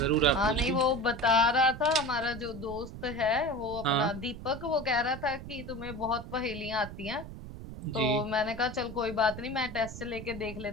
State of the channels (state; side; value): noise; right; rumble, 11 dB below the sound